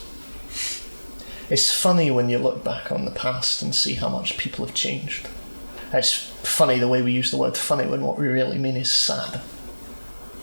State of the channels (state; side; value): inverted; both; correlation -1.00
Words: it's funny when you look back on the past and see how much people have changed. It's funny the way we use the word funny when what we really mean is sad.